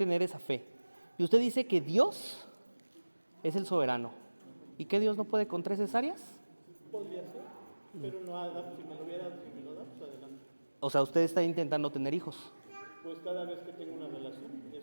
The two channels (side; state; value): both; inverted; correlation -1.00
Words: esa fe. Y usted dice que Dios es el soberano. ¿Y que Dios no puede con 3 cesáreas? Podría ser, pero no, si me lo hubiera, si me lo da, pues adelante. O sea, usted está intentando tener hijos. Pues cada vez que tengo una relación,